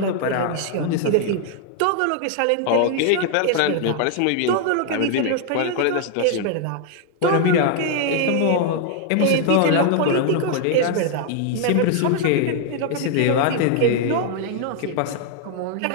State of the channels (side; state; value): both; different; correlation 0.00